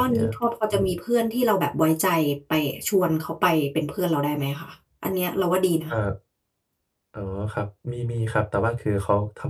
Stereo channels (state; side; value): identical; both; correlation 1.00